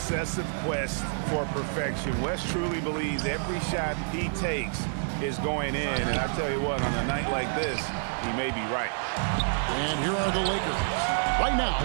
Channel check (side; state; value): left; silent; 59 dB below the other